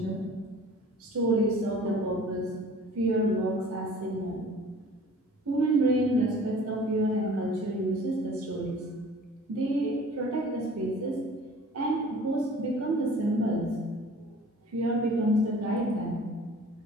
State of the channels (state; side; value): normal; both; correlation 0.47